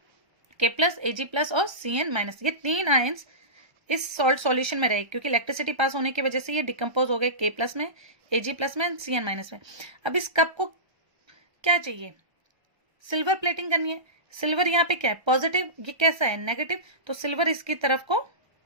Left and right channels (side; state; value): left; late; 1.3 ms